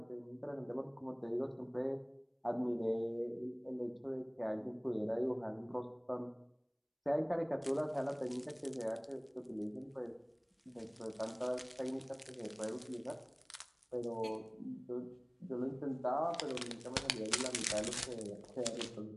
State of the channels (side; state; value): both; identical; correlation 1.00